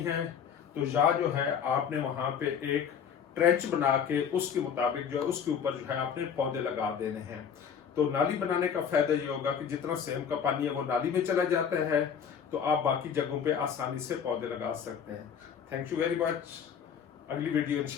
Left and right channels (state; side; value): quieter; right; 7.5 dB